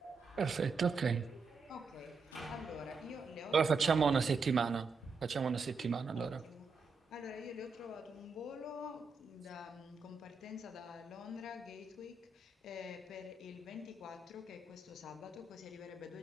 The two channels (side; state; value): left; quieter; 4.4 dB